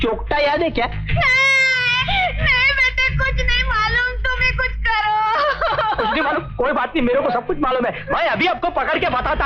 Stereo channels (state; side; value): identical; both; correlation 1.00